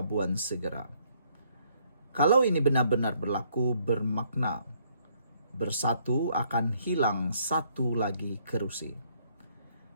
segera. Kalau ini benar-benar berlaku, bermakna bersatu akan hilang satu lagi kerusi.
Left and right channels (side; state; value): both; inverted; correlation -0.67